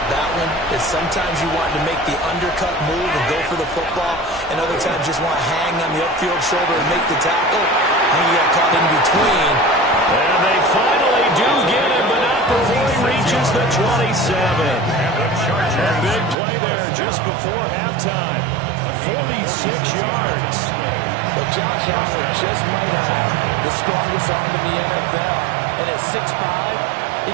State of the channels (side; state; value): left; drops out; at 16.4 s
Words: that one is sometimes you want to make the undercut move and go for the football, and other times just want to hang on the upfield shoulder and make the tackle. And you got caught in between. And they finally do get him, but not before he reaches the 27. A big play there just before halftime. 46 yards. But Josh Allen just might have the strongest arm in the NFL. And at 6'5", he